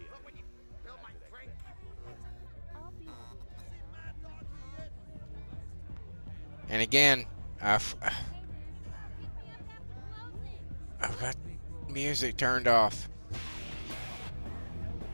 And again, I've got music turned off.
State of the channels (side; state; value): both; inverted; correlation -1.00